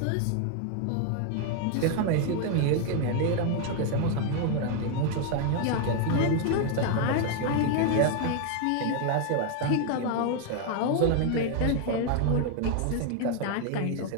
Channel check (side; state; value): both; different; correlation 0.00